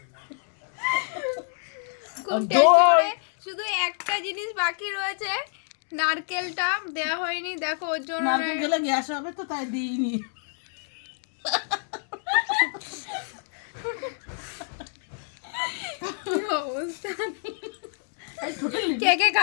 খুব টেস্টি করে। শুধু একটা জিনিস বাকি রয়েছে, নারকেলটা দেওয়া হয়নি। দেখো ওর জন্য নারকেল গেলে গ্যাস হবে তো তাই দিইনি। কি অবস্থা। কে কে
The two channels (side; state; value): right; silent; 60 dB below the other